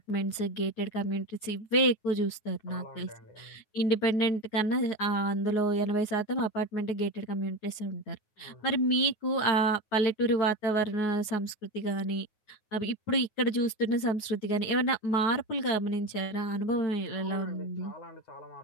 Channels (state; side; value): late; right; 9.5 ms